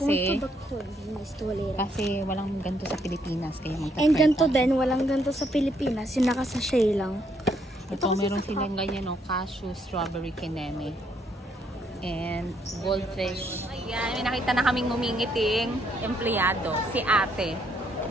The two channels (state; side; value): normal; both; correlation 0.72